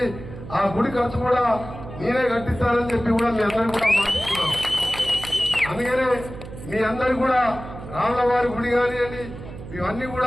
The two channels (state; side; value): noise; right; hum, 13 dB below the sound